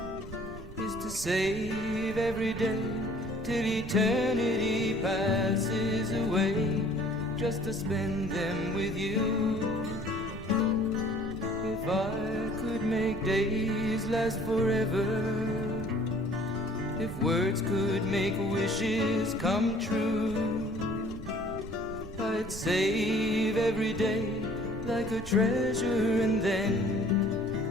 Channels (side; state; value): right; noise; rumble, 12 dB below the sound